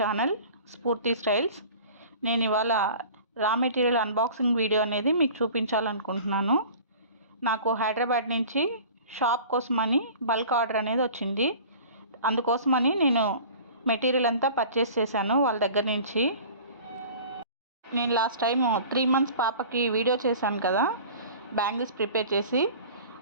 స్ఫూర్తి స్టైల్స్. నేను ఇవాళ రా మెటీరియల్ అన్బాక్సింగ్ వీడియో అనేది మీకు చూపించాలనుకుంటున్నాను. నాకు హైదరాబాద్ నుంచి షాప్ కోసమని బల్క్ ఆర్డర్ అనేది వచ్చింది. అందుకోసమని నేను మెటీరియల్ అంతా పర్చేస్ చేశాను వాళ్ళ దగ్గర నుంచి. నేను లాస్ట్ టైం 3 months పాపకి వీడియో చేశాను కదా, బ్యాంగిల్స్ ప్రిపేర్ చేసి.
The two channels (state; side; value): inverted; both; correlation -0.42